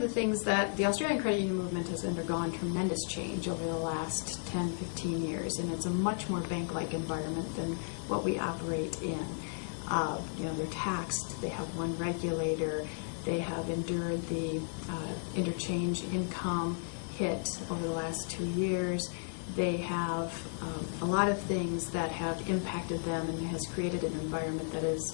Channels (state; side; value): silent; right; digital silence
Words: the things that the Australian credit union movement has undergone tremendous change over the last 10, 15 years, and it's a much more bank-like environment than what we operate in. They're taxed, they have one regulator, they have endured the interchange income hit over the last 2 years. They have a lot of things that have impacted them and has created an environment that